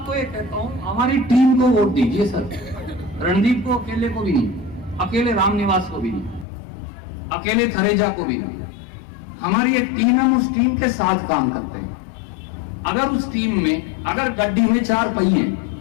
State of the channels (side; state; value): right; drops out; at 6.5 s